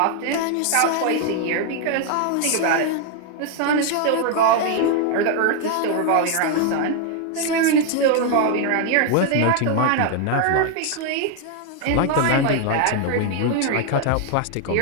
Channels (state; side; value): different; both; correlation 0.00